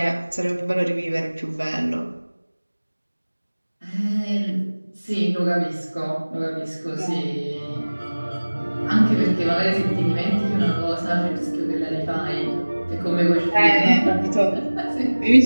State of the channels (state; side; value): inverted; both; correlation -1.00